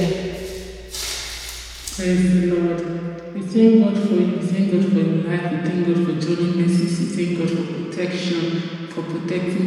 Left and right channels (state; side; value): identical; both; correlation 1.00